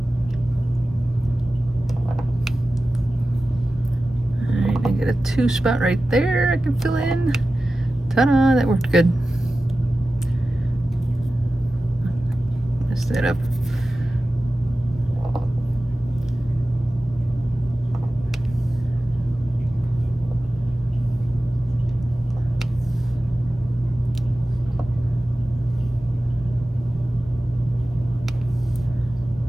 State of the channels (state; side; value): normal; both; correlation 0.95